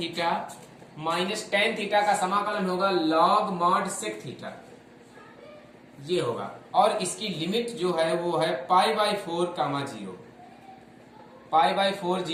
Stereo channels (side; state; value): both; identical; correlation 1.00